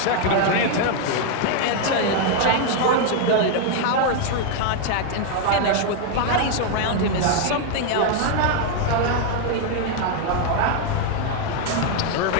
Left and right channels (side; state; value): both; different; correlation 0.00